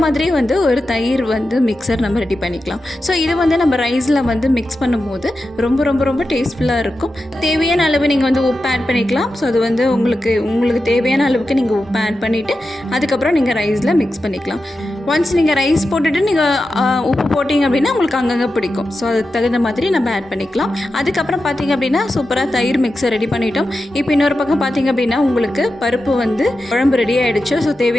மாதிரி வந்து ஒரு தயிர் வந்து மிக்சர் நம்ம ரெடி பண்ணிக்கலாம். ஸோ இது வந்து நம்ம ரைஸில் வந்து மிக்ஸ் பண்ணும்போது ரொம்ப ரொம்ப ரொம்ப டேஸ்ட்ஃபுல்லாக இருக்கும். தேவையான அளவு நீங்கள் வந்து உப்பு ஆட் பண்ணிக்கலாம். ஸோ அது வந்து உங்களுக்கு தேவையான அளவுக்கு நீங்கள் உப்பு ஆட் பண்ணிவிட்டு அதுக்கப்புறம் நீங்கள் ரைஸில் மிக்ஸ் பண்ணிக்கலாம். ஒன்ஸ் நீங்கள் ரைஸ் போட்டுட்டு நீங்கள் உப்பு போட்டிங்க அப்படின்னா உங்களுக்கு அங்கங்கே பிடிக்கும். ஸோ அதுக்கு தகுந்த மாதிரி நம்ம ஆட் பண்ணிக்கலாம். அதுக்கப்புறம் பார்த்திங்க அப்படின்னா சூப்பராக தயிர் மிக்ஸை ரெடி பண்ணிட்டோம். இப்போ இன்னொரு பக்கம் பார்த்திங்க அப்படின்னா உங்களுக்கு பருப்பு வந்து குழம்பு ரெடி ஆகிடுச்சு. ஸோ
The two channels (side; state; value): both; normal; correlation 0.91